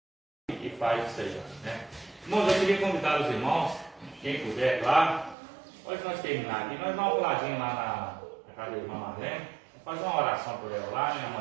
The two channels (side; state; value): left; drops out; at 5.4 s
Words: E faz isso aí, né? Irmãos, eu queria convidar os irmãos, quem puder, claro. Pode nós terminar aqui, nós damos um puladinho lá na casa da irmã Marlene, fazer uma oração por ela lá, né?